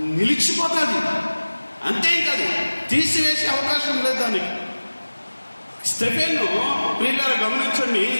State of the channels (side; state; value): both; inverted; correlation -1.00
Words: నిలిచిపోతుంది. అంతేకాదు, తీసివేసే అవకాశం లేదు దానికి. స్టెఫెను ప్రియులారా గమనించండి,